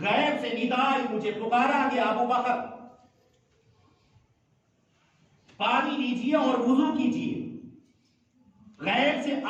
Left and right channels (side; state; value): both; identical; correlation 1.00